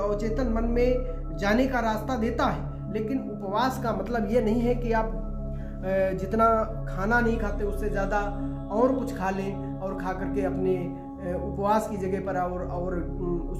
मन में जाने का रास्ता देता है। लेकिन उपवास का मतलब ये नहीं है कि आप जितना खाना नहीं खाते उससे ज़्यादा और कुछ खा लें और खा करके अपने उपवास की जगह पर और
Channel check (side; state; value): both; identical; correlation 1.00